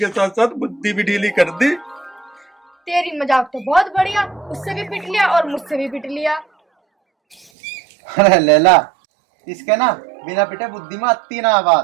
साथ साथ बुद्धि भी ढीली कर दी। तेरी मजाक तो बहुत बढ़िया, उससे भी पिट लिया और मुझसे भी पिट लिया। अरे लैला, इसके ना बिना पिटे बुद्धि में आती ना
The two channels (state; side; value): drops out; left; at 7.5 s